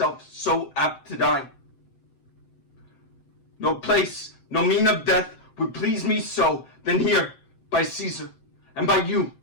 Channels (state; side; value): late; right; 7.7 ms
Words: so apt to die. No place, no mean of death would please me so than here by Caesar, and by you,